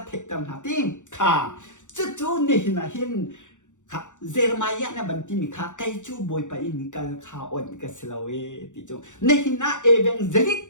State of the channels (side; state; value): right; late; 0.85 ms